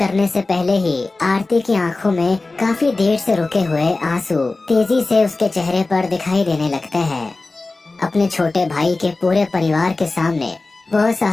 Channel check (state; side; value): quieter; right; 3.4 dB